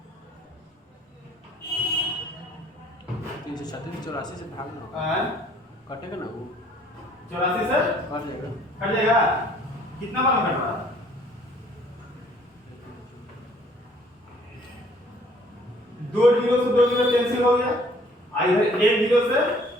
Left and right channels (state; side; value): normal; both; correlation 0.59